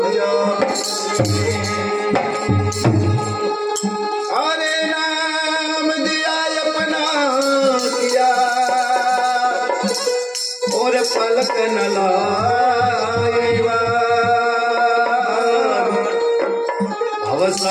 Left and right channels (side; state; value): both; identical; correlation 1.00